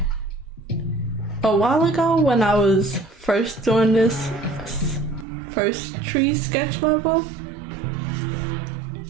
while ago when I was first doing this first tree sketch level,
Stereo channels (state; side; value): drops out; left; at 5.2 s